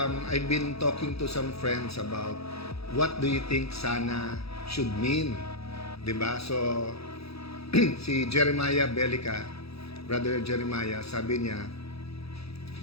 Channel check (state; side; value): late; right; 0.77 ms